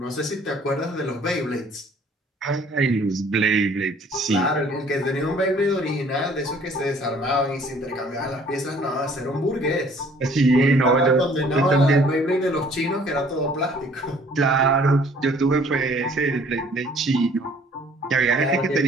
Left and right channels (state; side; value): normal; both; correlation 0.57